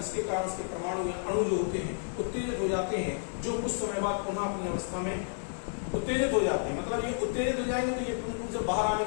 कारण उसके परमाणु या अणु जो होते हैं उत्तेजित हो जाते हैं, जो कुछ समय बाद पुनः अपनी अवस्था में उत्तेजित हो जाते हैं। मतलब ये उत्तेजित हो जाएंगे तो ये प्रमुख रूप से बाहर आने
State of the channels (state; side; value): silent; right; digital silence